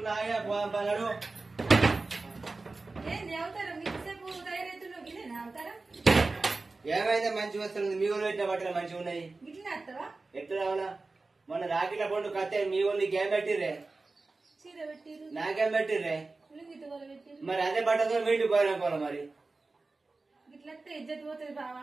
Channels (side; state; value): left; quieter; 3.6 dB